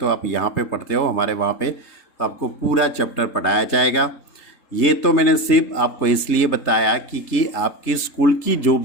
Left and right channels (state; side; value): late; right; 3.3 ms